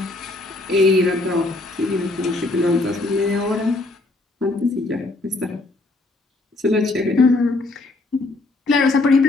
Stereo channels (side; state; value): right; quieter; 3.0 dB